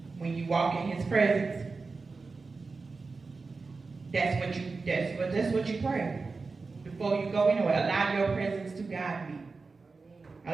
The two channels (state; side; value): quieter; left; 4.2 dB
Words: When you walk in His presence, that's what you pray. Before you go anywhere, allow your presence to guide me.